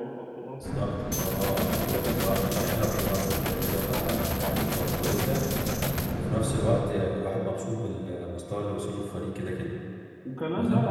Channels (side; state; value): both; identical; correlation 1.00